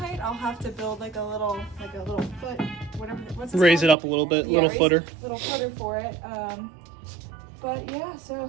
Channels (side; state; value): left; drops out; at 4.0 s